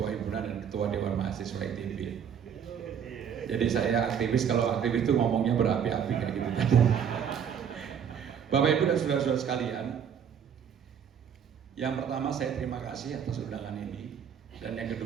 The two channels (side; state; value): left; quieter; 8.0 dB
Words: Himpunan dan Ketua Dewan Mahasiswa ITB. Jadi saya aktivis, kalau aktivis itu ngomongnya berapi-api kayak gitu. Bapak Ibu dan saudara-saudara sekalian, yang pertama saya terima kasih atas undangan ini, dan yang